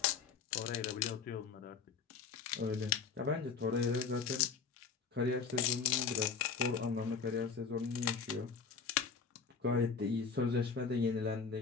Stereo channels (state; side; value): quieter; right; 5.6 dB